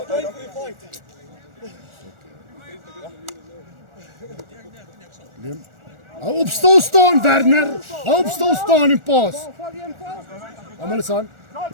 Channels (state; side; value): late; left; 1.4 ms